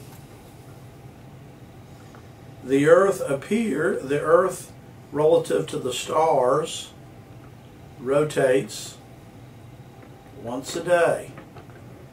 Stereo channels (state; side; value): identical; both; correlation 1.00